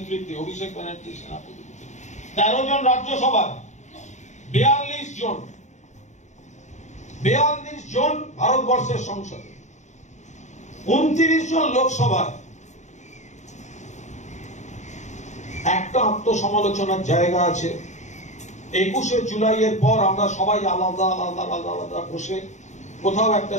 অভিষেক ব্যানার্জির সেনাপতি। 13 জন রাজ্যসভায়, 42 জন ভারতবর্ষের সংসদে, 29 জন লোকসভায়। একটা আত্মসমালোচনার জায়গা আছে। 21শে জুলাইয়ের পর আমরা সবাই আলাদা আলাদা আলাদা আলাদা বসে কোথাও একটা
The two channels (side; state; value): right; late; 0.34 ms